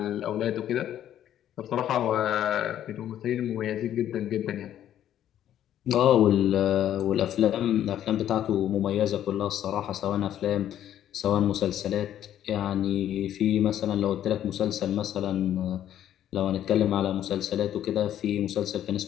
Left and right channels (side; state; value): right; quieter; 11.2 dB